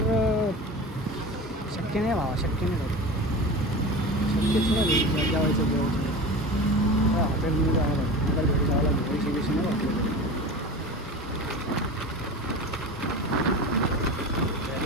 शक्य नाही भावा. शक्यच नाही जेवायचं हॉटेलमध्ये जायला मला घरी जायला पैसे बिशे नाही वाटले.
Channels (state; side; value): normal; both; correlation 0.31